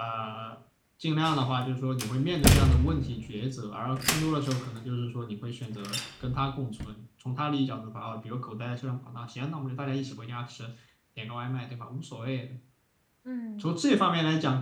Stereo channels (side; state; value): both; identical; correlation 1.00